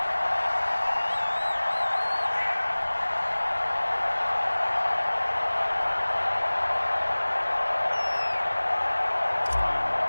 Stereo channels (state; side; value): inverted; both; correlation -1.00